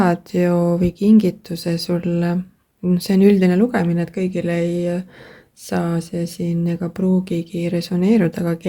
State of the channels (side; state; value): both; identical; correlation 1.00